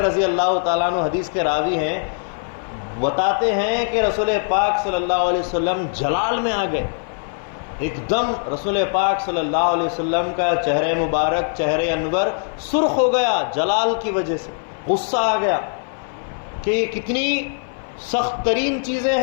رضی اللہ تعالیٰ عنہ حدیث کے راوی ہیں، بتاتے ہیں کہ رسول پاک صلی اللہ علیہ وسلم جلال میں آ گئے۔ ایک دم رسول پاک صلی اللہ علیہ وسلم کا چہرہ مبارک، چہرہ انور سرخ ہو گیا جلال کی وجہ سے، غصہ آ گیا کہ یہ کتنی سخت ترین چیزیں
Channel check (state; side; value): silent; right; 57 dB below the other